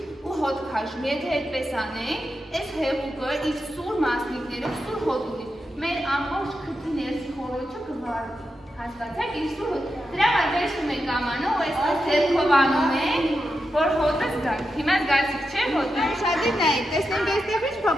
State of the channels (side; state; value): both; normal; correlation 0.88